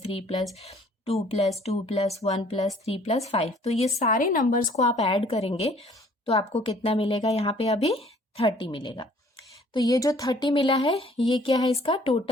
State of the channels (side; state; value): both; normal; correlation 0.57